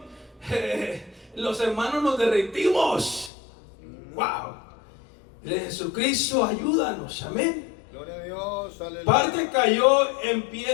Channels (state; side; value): drops out; right; at 3.3 s